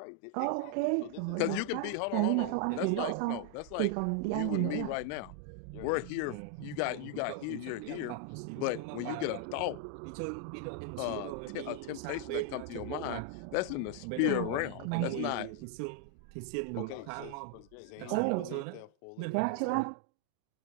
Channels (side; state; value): both; different; correlation 0.00